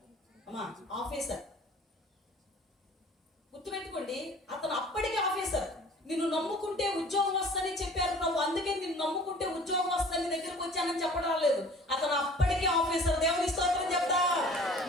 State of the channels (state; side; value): normal; both; correlation 0.47